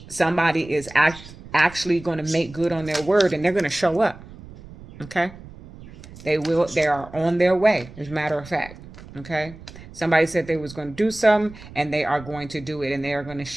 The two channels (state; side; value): noise; right; rumble, 18 dB below the sound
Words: somebody is actually going to make good on their word, and they're going to show up, okay? They are on their way, as a matter of fact, okay? Somebody said they was going to do something, and they are going to do it, and they are going to